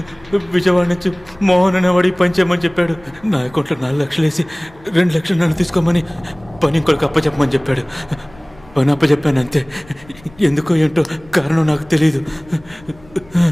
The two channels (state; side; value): noise; left; rumble, 25 dB below the sound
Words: విజయవాడ నుంచి మోహన్ అనేవాడి పని చేయమని చెప్పాడు. నా అకౌంట్లో 4 లక్షలు వేసి 2 లక్షలు నన్ను తీసుకోమని పని ఇంకొకరికి అప్పచెప్పమని చెప్పాడు. పని అప్పచెప్పాను అంతే. ఎందుకో ఏంటో కారణం నాకు తెలియదు.